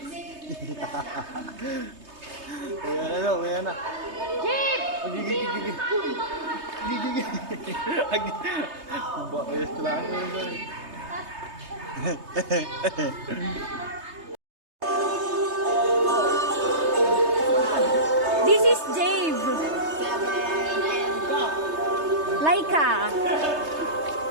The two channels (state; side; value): late; left; 3.3 ms